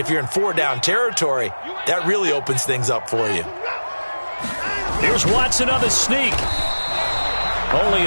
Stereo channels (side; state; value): both; inverted; correlation -1.00